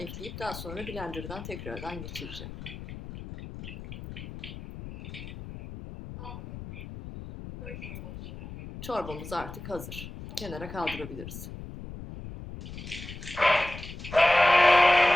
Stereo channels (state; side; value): noise; left; rumble, 11 dB below the sound